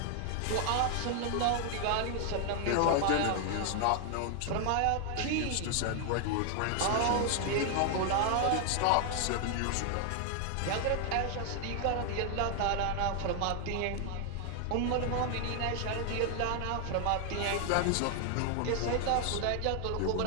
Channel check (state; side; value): different; both; correlation 0.00